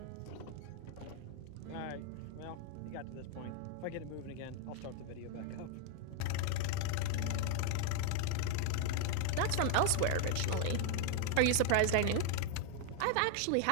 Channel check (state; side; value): different; both; correlation 0.01